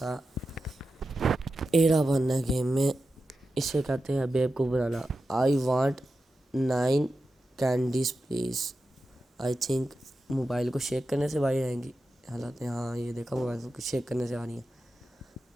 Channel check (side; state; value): both; normal; correlation 0.91